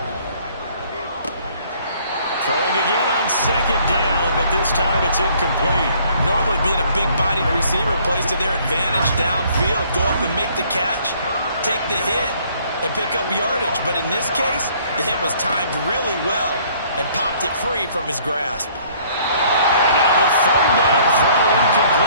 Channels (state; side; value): inverted; both; correlation -0.59